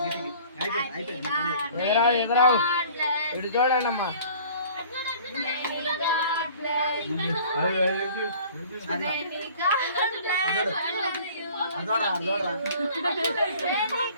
ఎదురావు ఇటు చూడండి అమ్మా. అదోడా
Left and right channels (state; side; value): inverted; both; correlation -0.49